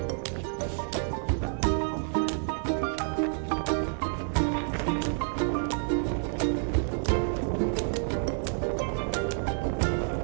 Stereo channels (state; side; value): silent; left; 59 dB below the other